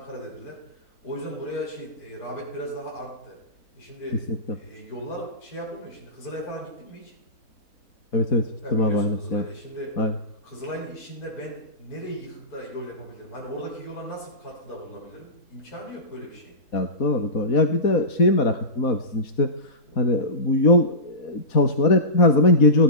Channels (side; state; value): right; late; 4.1 ms